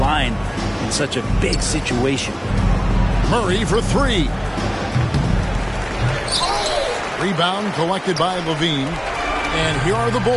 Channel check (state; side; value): identical; both; correlation 1.00